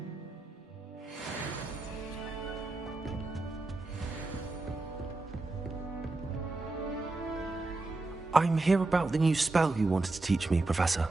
I'm here about the new spell you wanted to teach me, Professor.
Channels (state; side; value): quieter; left; 3.2 dB